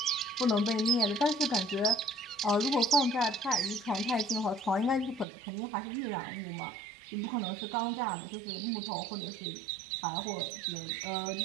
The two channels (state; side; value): drops out; left; at 5.2 s